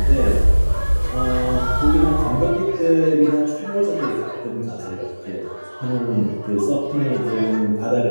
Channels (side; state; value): both; inverted; correlation -1.00